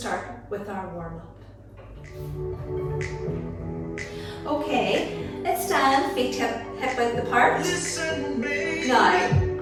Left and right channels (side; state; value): both; identical; correlation 1.00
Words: with our warm-up. Okay, let's stand, feet hip width apart. Now,